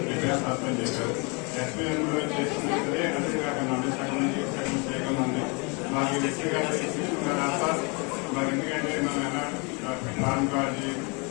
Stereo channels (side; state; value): right; quieter; 31.4 dB